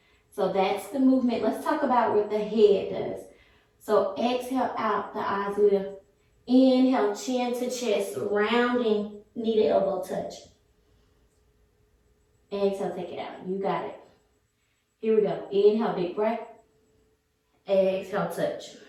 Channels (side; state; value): both; identical; correlation 1.00